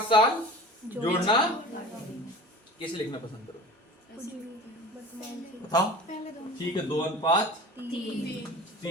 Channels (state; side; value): normal; both; correlation 0.38